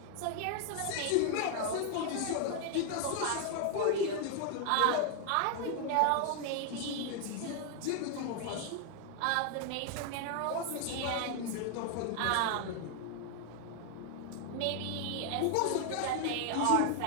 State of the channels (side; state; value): both; different; correlation 0.00